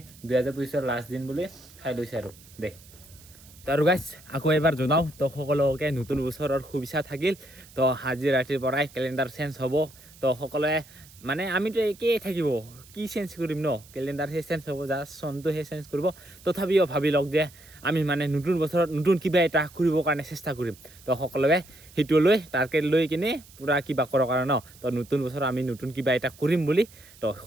2025 লাষ্ট দিন বুলি খাই লৈছে আৰু দে তো আৰু গাইছ আকৌ এবাৰ জনাওঁ তো সকলোকে নতুন বছৰৰ শুভেচ্ছা থাকিল তো আজি ৰাতিৰ পৰাই কেলেণ্ডাৰ চেঞ্জ হ'ব তো সকলোৱে মানে আমিতো একেই থাকিব কি চেঞ্জ কৰিম ন কেলেণ্ডাৰহে চেঞ্জ হ'ব জাষ্ট চনটোহে চেঞ্জ কৰিব তথাপিও ভাবি লওক যে আমি মানে নতুন বছৰত নতুন কিবা এটা কৰিবৰ কাৰণে চেষ্টা কৰিম তো সকলোৱে সেইটো লৈ টাৰ্গেট লৈ কিনে পূৰা কিবা কৰক আৰু ন তো নতুন বছৰত আমি নতুন কিবা এটা কৰিম বুলি তো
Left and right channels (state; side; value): noise; right; hiss, 23 dB below the sound